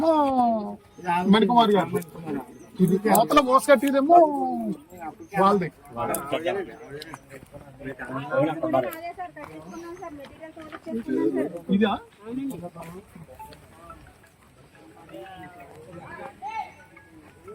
మణికుమార్ గారు, ఇది అవతల మోసకట్టిదేమో వాళ్ళది. ఇదా?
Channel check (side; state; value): both; identical; correlation 1.00